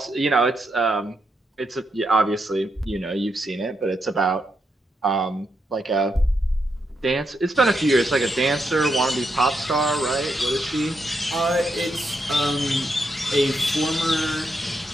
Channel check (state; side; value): normal; both; correlation 0.81